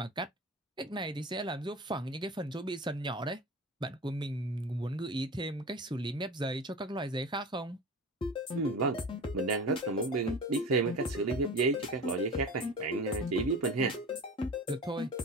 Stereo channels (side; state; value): both; normal; correlation 0.33